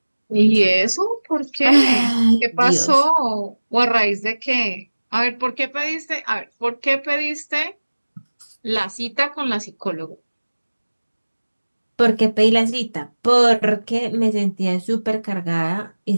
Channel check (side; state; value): both; inverted; correlation -1.00